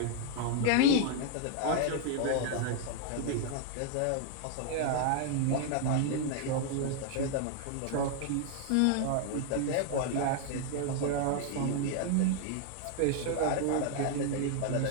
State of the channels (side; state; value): both; different; correlation 0.00